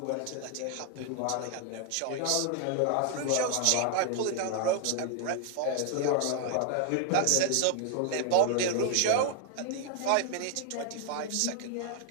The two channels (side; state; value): both; different; correlation 0.00